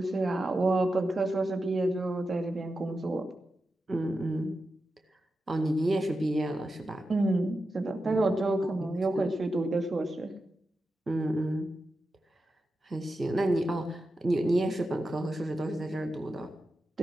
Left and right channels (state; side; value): normal; both; correlation 0.90